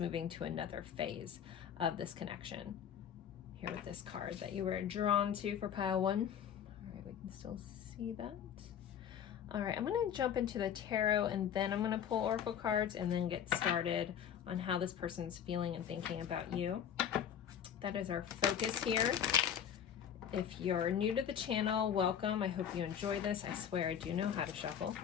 to another phase of this connection. Here with this card that you were drawn to for pile 1. All right, we can still see that. All right, I'm going to jump into the tarot and then I'm going to pull oracle cards and then get started on how this person's feeling and thinking about you. That is our focus here. If you're new to the channel, welcome. I hope you enjoy this. I swear I do know how to shuffle.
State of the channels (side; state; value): right; quieter; 8.8 dB